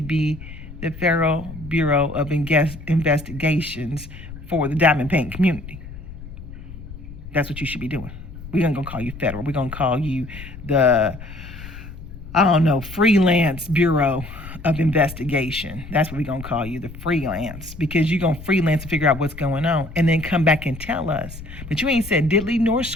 the Federal Bureau of Investigations for the diamond painting community. That's what you should be doing. We're not going to call you federal. We're going to call you the freelance Bureau of Investigation. That's what we're going to call you, the freelance, because you're going to freelance and figure out what's going on and then come back and tell us. But you ain't said diddly nor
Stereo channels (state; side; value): noise; left; rumble, 13 dB below the sound